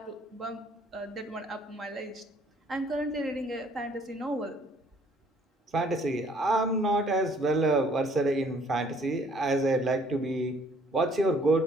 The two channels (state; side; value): normal; both; correlation 0.60